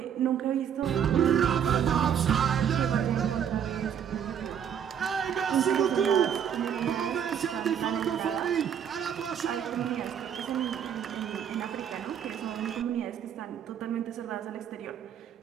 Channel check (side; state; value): left; quieter; 8.6 dB